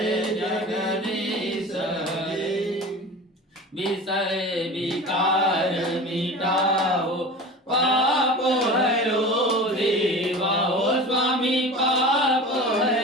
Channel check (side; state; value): both; normal; correlation 0.35